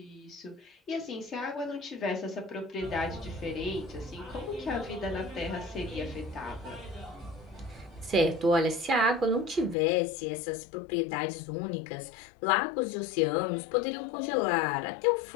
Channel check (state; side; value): drops out; right; at 9.8 s